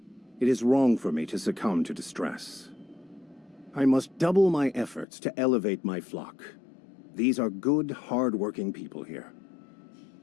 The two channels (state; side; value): drops out; right; at 5.1 s